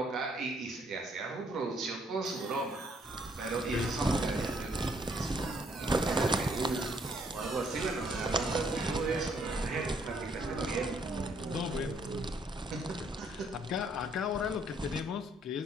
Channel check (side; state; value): both; normal; correlation 0.67